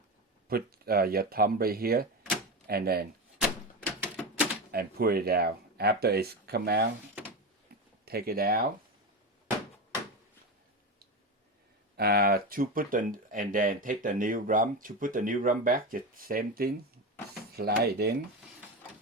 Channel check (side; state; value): both; normal; correlation 0.19